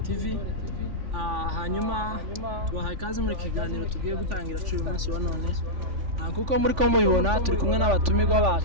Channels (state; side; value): late; left; 3.5 ms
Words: Hanyuma tubahaye kaze muri kiganiro tugiye gutangira uyu munsi wa none. Kuko muri ko mubibona turi kumwe n'abatumirwa